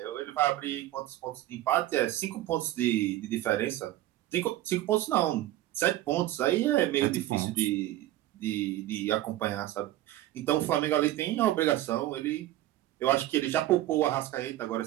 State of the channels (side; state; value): left; quieter; 14.7 dB